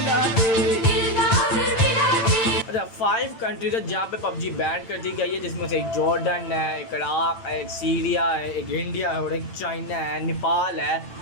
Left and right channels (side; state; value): right; late; 8.9 ms